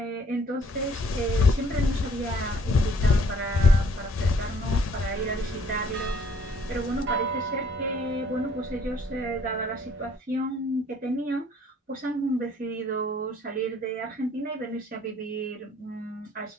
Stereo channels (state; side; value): normal; both; correlation 0.60